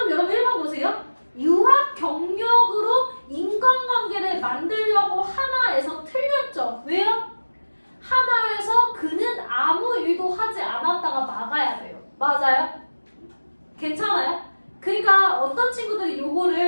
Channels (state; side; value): inverted; both; correlation -1.00